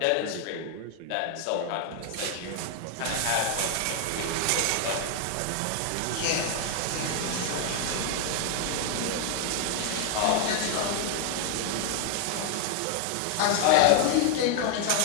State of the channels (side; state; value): both; different; correlation 0.00